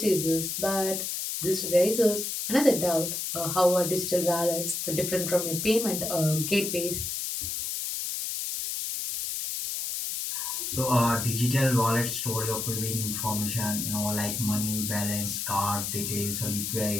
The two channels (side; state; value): left; noise; hiss, 3 dB below the sound